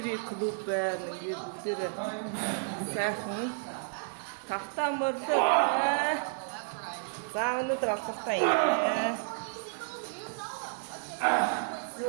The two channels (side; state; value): left; silent; digital silence